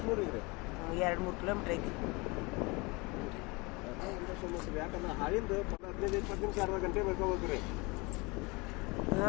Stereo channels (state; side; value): quieter; right; 26.5 dB